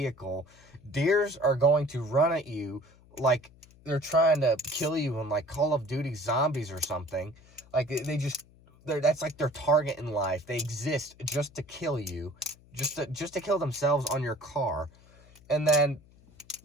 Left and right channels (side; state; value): left; noise; hum, 26 dB below the sound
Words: Deers are going to run at you like they're trying to kill you in like Call of Duty Zombies or something. Like that's like their target in life. They exist just to kill you. Just to kill themselves on your car. And then